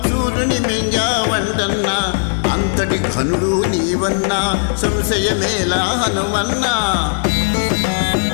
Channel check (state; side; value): silent; right; digital silence